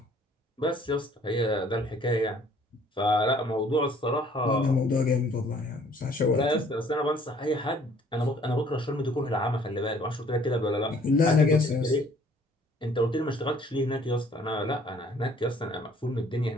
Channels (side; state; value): both; normal; correlation 0.58